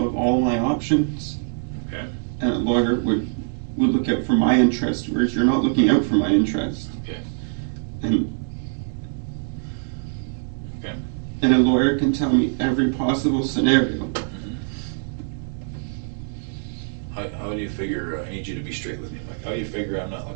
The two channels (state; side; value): silent; left; digital silence